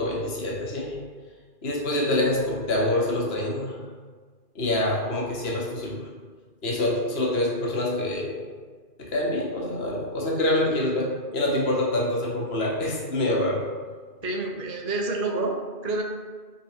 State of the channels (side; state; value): right; late; 2.4 ms